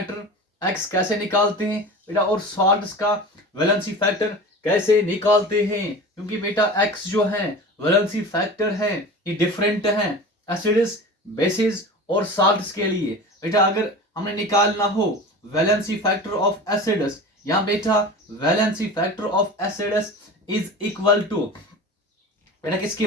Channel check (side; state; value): both; normal; correlation 0.34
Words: x कैसे निकालते हैं बेटा, और सॉल्ट्स का वैलेंसी फैक्टर कैसे निकालते हैं, क्योंकि बेटा x जो है वैलेंसी फैक्टर है ये डिफरेंट है एसिड्स, बेसिस और सॉल्ट्स के लिए। बेटा अगर हमने निकालना हो वैलेंसी फैक्टर ऑफ एसिड्स, यहाँ बेटा valency factor of acids is equal to बेटा किसके